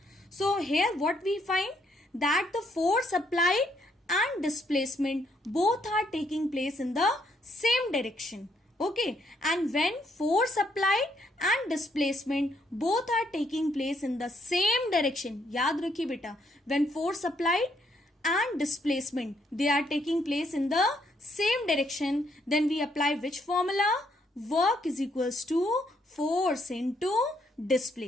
So here what we find that the force applied and displacement both are taking place in the same direction. Okay, and when force applied and displacement both are taking place in the same direction, याद रखिए बेटा, when force applied and displacement they are taking place in the same direction, then we apply which formula? Work is equals to force into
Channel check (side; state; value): both; normal; correlation 0.72